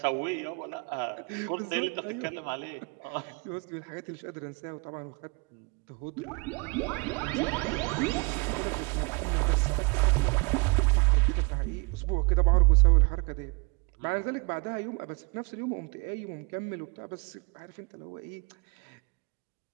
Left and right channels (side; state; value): left; quieter; 30.4 dB